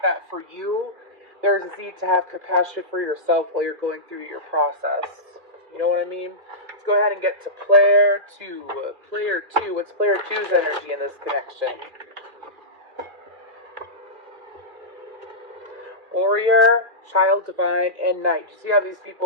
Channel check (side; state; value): left; late; 2.4 ms